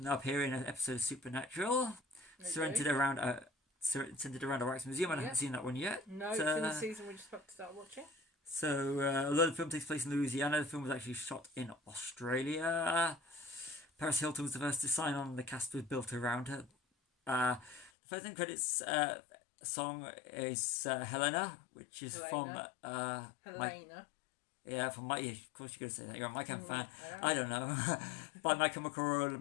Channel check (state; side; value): drops out; right; at 17.9 s